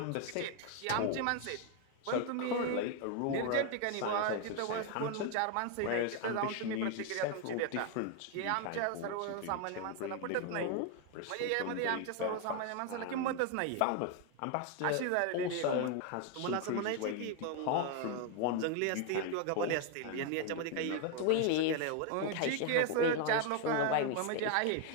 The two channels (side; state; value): both; different; correlation 0.01